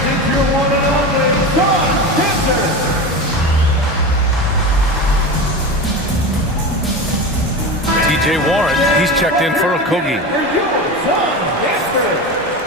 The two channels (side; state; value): both; normal; correlation 0.25